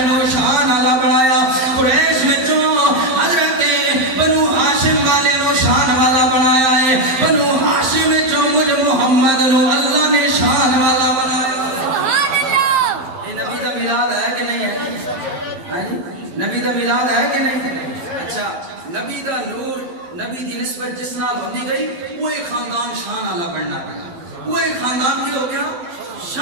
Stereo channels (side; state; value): left; late; 11 ms